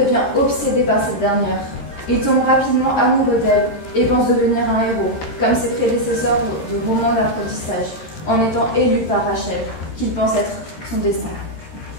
obsédé par cette dernière. Il tombe rapidement amoureux d'elle et pense devenir un héros, comme ses prédécesseurs de romans d'apprentissage, en étant élu par Rachel, qu'il pense être son destin.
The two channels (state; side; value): late; right; 13 ms